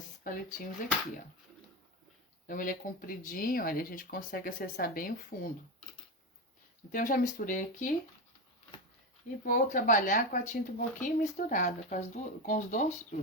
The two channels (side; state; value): both; normal; correlation 0.15